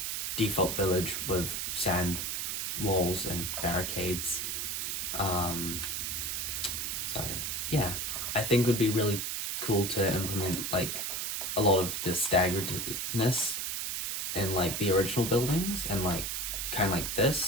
default village with sand walls and barricades. So yeah, I think it would be really cool to implement like a lot of the staggeredness in like the original buildings, and like kind of like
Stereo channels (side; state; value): right; noise; hiss, 2 dB below the sound